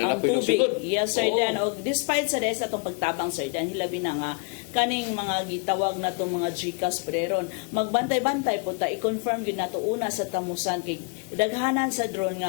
tubig. Yes, sir Dan. O, despite sa rest atong pagtabang, sir Dan, hilabi na nga, kaning mga gitawag na itong mga GCash preron, magbantay-bantay po ta, i-confirm yun na ito una sa tamusan, kay daghanan sa drone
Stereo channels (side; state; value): right; quieter; 32.2 dB